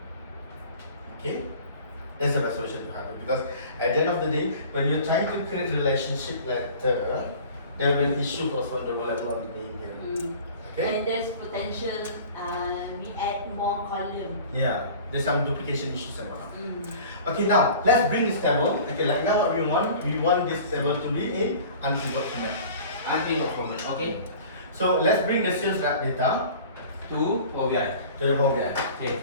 Okay, that's the best solution to have it, because at the end of the day, when you're trying to create a relationship letter, there will be issues also the level of the name here. Okay. And there's potential we add more column. Yeah, there's some duplication issues and whatnot. Okay, now let's bring this table. Okay, like now what we want this table to be in unpivot format. Unpivot format. Okay. So let's bring the sales rep data To OBI. to the Power BI. Okay.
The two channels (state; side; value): inverted; both; correlation -0.43